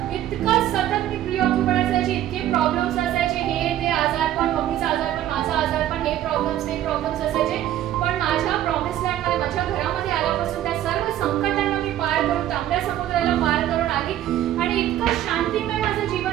इतकं सतत मी प्रिऑक्युपाइड असायची, इतके प्रॉब्लेम्स असायचे, हे ते आजारपण, मम्मीचा आजारपण, माझा आजारपण, हे प्रॉब्लेम्स असायचे. पण माझ्या प्रॉमिस लँडमध्ये, माझ्या घरामध्ये आल्यापासून त्या सर्व संकटांना मी पार करून, तांबड्या समुद्राला पार करून आली आणि इतकं शांतिमय माझं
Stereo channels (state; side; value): quieter; left; 12.4 dB